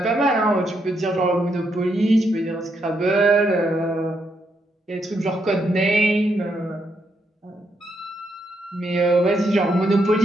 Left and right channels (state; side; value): normal; both; correlation 0.78